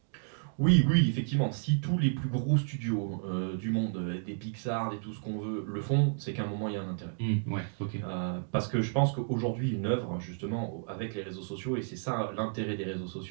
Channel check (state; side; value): silent; left; digital silence